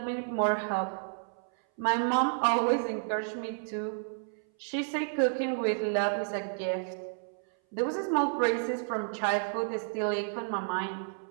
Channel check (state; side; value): silent; left; 57 dB below the other